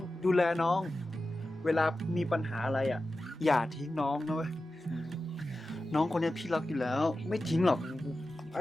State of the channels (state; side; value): normal; both; correlation 0.93